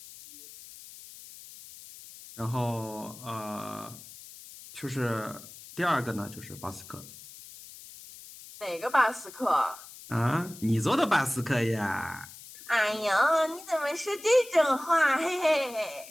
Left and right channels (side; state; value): left; noise; hiss, 17 dB below the sound